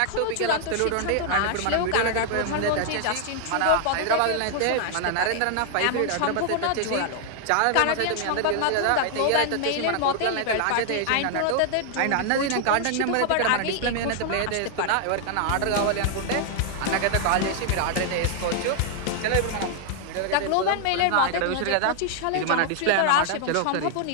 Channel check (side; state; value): both; different; correlation 0.00